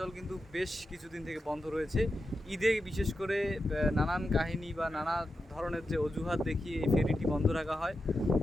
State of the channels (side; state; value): both; normal; correlation 0.89